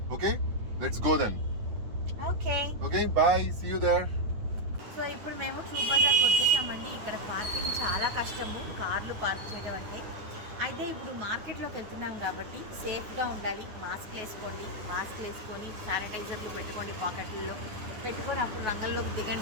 Okay, let's go then. Okay, bye, see you there. So ఇప్పుడు మేము ట్రూప్ బజార్కి వచ్చేసామండి. ఇక్కడ పార్కింగ్ చాలా కష్టము, కార్లు పార్క్ చేయడం అంటే. అయితే ఇప్పుడు మార్కెట్లోకి వెళ్తున్నాం కాబట్టి సేఫ్గా ఉండాలి. మాస్క్లు వేసుకోండి, మాస్క్లు వేసుకొని శానిటైజర్లు పెట్టుకోండి, పాకెట్లలో పెట్టుకొని అప్పుడు రంగంలోకి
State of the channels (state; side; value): late; left; 9.4 ms